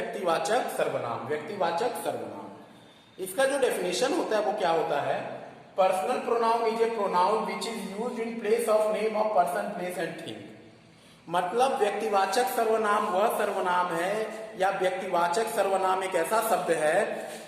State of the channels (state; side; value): identical; both; correlation 1.00